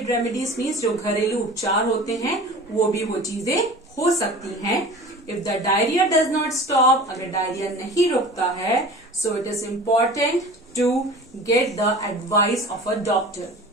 रेमेडीज मीन्स जो घरेलू उपचार होते हैं वो भी वो चीजें हो सकती हैं। If the diarrhoea does not stop, अगर डायरिया नहीं रुकता है, so it is important to get the advice of a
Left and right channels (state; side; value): normal; both; correlation 0.39